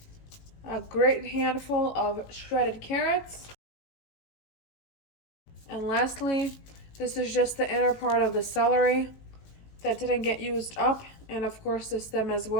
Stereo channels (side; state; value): right; late; 19 ms